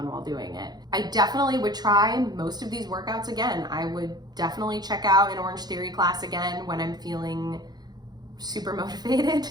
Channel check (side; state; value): left; late; 0.20 ms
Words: while doing it. I definitely would try most of these workouts again. I would definitely check out an Orange Theory class again when I'm feeling super motivated.